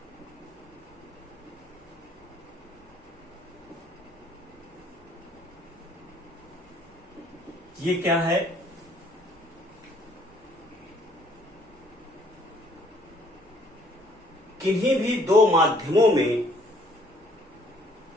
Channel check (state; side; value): normal; both; correlation 0.62